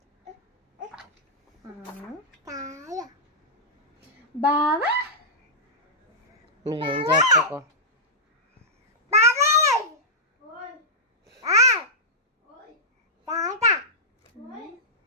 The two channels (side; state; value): both; normal; correlation -0.12